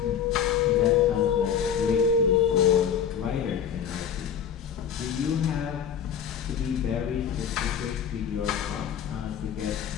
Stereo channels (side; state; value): right; quieter; 8.2 dB